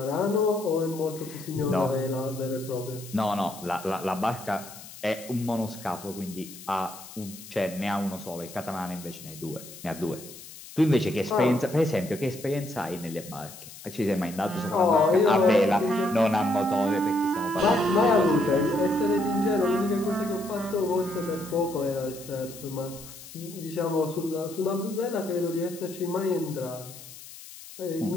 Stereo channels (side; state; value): left; noise; hiss, 16 dB below the sound